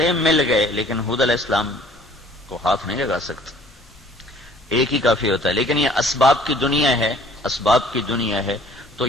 مل گئے لیکن ہود علیہ السلام کو ہاتھ نہیں لگا سکتے، ایک ہی کافی ہوتا ہے. لیکن یہ اسباب کی دنیا ہے، اسباب کی دنیا ہے، تو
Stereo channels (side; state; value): both; normal; correlation 0.54